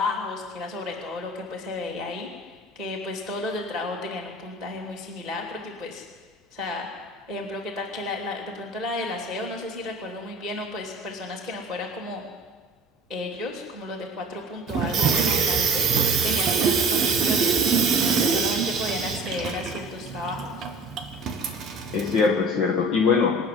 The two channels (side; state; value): both; normal; correlation 0.43